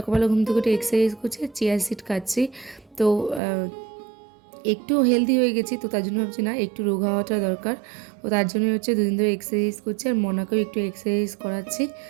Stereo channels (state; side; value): drops out; left; at 3.4 s